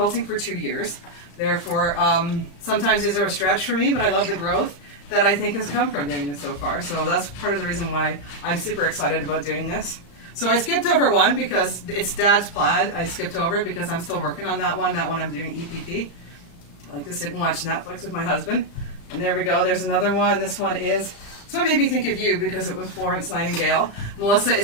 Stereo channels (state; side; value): late; right; 35 ms